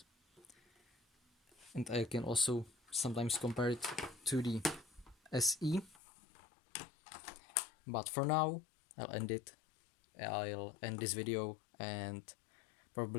And I can also sometimes compare it to the SE. But for now, I'll end this video and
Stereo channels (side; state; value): right; drops out; at 6.0 s